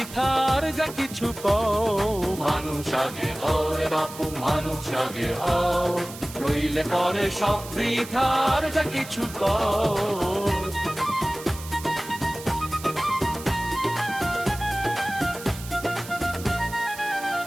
যা কিছু কও। মানুষ আগে হও রে বাপু, মানুষ আগে হও, নইলে পরে সব বৃথার যা কিছু কও।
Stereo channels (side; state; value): right; noise; hiss, 14 dB below the sound